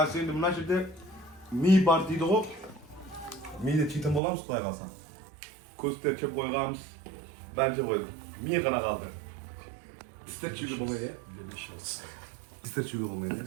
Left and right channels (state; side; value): drops out; left; at 4.2 s